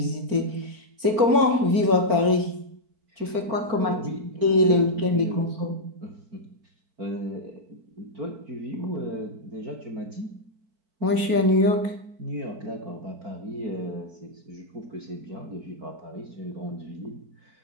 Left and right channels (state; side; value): late; left; 4.4 ms